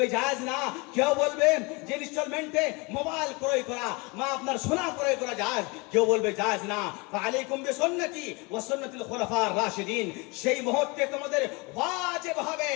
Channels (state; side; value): quieter; right; 27.6 dB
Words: জায়েজ না, কেউ বলবে যে ইনস্টলমেন্টে মোবাইল ক্রয় করা বা আপনার সোনা ক্রয় করা জায়েজ, কেউ বলবে জায়েজ না। ফাআলাইকুম বিসুন্নতি ওয়া সুন্নাতিল খুলাফার রাশিদিন, সেই মুহূর্তে তোমাদের ওয়াজিব হবে